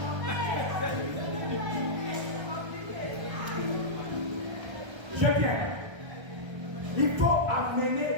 J'aime bien. Il faut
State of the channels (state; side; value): late; left; 1.3 ms